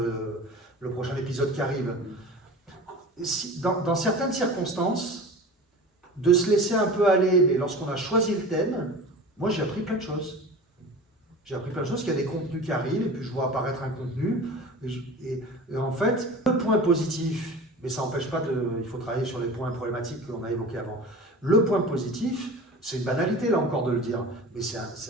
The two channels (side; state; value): both; normal; correlation 0.36